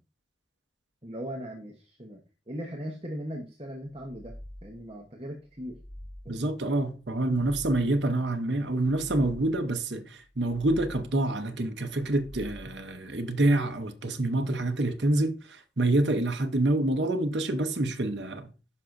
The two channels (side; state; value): both; normal; correlation 0.72